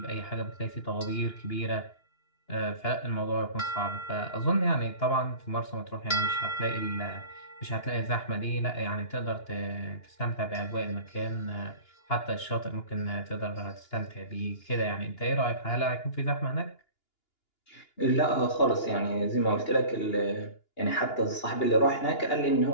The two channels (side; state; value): right; late; 2.9 ms